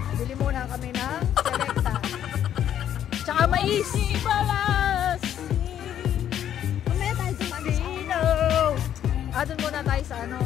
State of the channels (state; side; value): quieter; right; 10.3 dB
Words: Bili muna kami ng Selecta. Tsaka mais. Mamaya tayo sa Sino? Doon muna tayo sa ano.